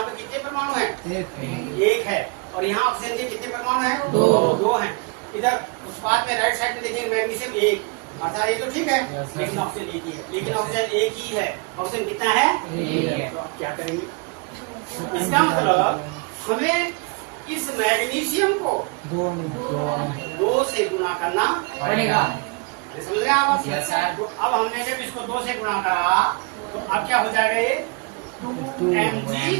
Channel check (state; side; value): quieter; left; 30.5 dB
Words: पे कितने परमाणु हैं? एक है। और यहाँ ऑक्सीजन के कितने परमाणु हैं? दो हैं। इधर उत्पाद में राइट साइड में देखेंगे मैग्नीशियम एक, अर्थात ये तो ठीक है, लेकिन ऑक्सीजन एक ही है। लेकिन ऑक्सीजन एक ही है, ऑक्सीजन कितना है? तो आप क्या करेंगे? इसका मतलब हमें इस मैग्नीशियम को दो से गुणा करना पड़ेगा। समझ रहे हैं आप? तो अब हमने जब इसको 2 से गुणा करा तो अब क्या हो जाएगा? ये